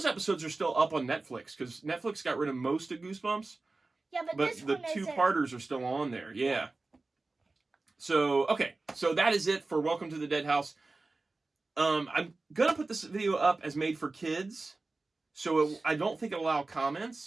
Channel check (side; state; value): left; quieter; 3.4 dB